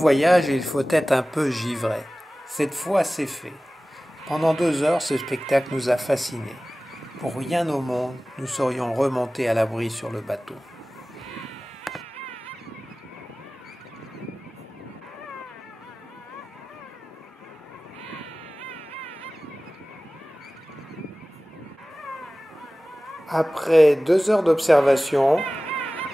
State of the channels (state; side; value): normal; both; correlation 0.97